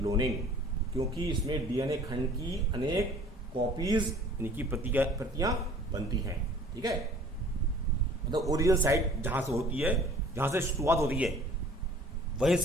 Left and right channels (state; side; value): normal; both; correlation 0.50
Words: क्योंकि इसमें डीएनए खंड की अनेक कॉपीज यानी कि प्रतियां बनती हैं। ठीक है, मतलब ओरिजिनल साइट जहां से होती है, जहां से शुरुआत होती है, वहीं